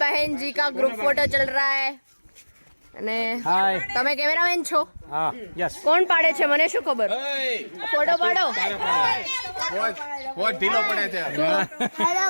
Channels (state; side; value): inverted; both; correlation -1.00